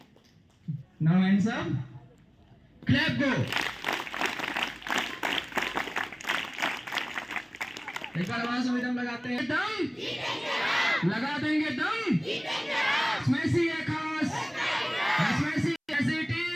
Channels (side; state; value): both; identical; correlation 1.00